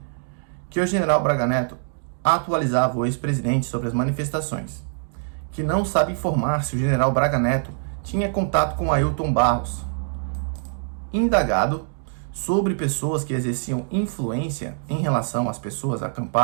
que o general Braga Neto atualizava o ex-presidente sobre as manifestações, que não sabe informar se o general Braga Neto tinha contato com Ailton Barros, indagado sobre pessoas que exerciam influência em relação às pessoas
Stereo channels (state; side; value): silent; left; digital silence